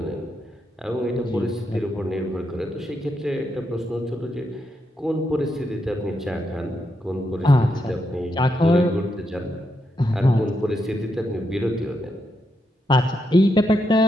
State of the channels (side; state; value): both; normal; correlation 0.82